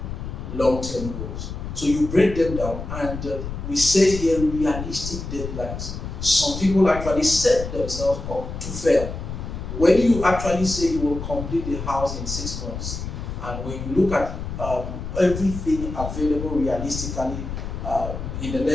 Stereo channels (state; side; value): noise; left; rumble, 7 dB below the sound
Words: long-term goals. So you break them down, and we set here realistic deadlines. Some people actually set themselves up to fail. When you actually say you will complete the house in 6 months, and when you look at everything available realistically in the